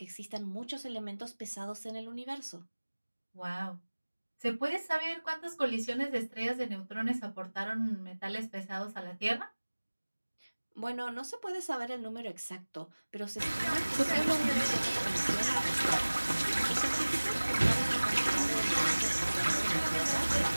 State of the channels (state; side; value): inverted; both; correlation -1.00